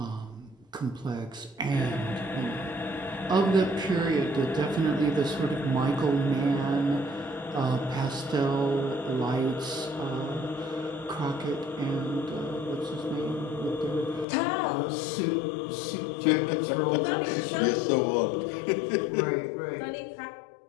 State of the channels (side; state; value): right; drops out; at 14.2 s